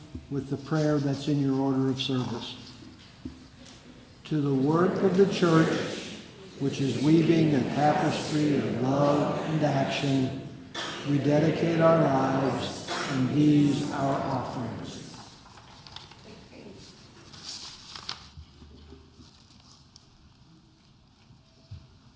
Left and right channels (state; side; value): identical; both; correlation 1.00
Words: with the prayer that's in your order of service? To the work of the church, which is weaving a tapestry of love and action, we dedicate our lives and these our offerings.